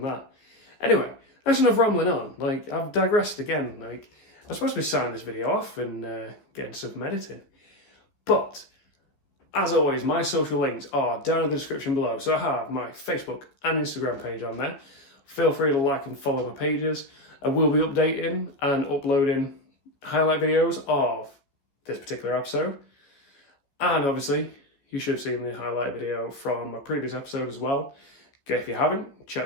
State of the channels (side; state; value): right; late; 14 ms